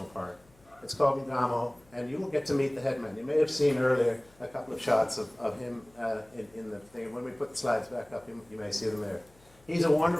park. It's called Ngamo, and you will get to meet the headman. You may have seen earlier a couple of shots of him in the thing. When we put the slides back up, you may see them there. He's a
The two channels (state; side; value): noise; left; hum, 29 dB below the sound